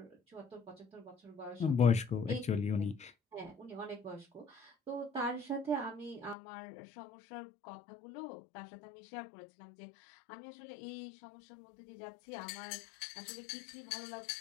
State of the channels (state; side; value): drops out; right; at 6.4 s